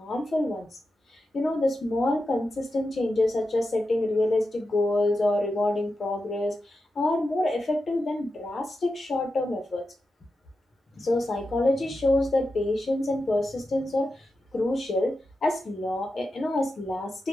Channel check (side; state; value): both; normal; correlation 0.90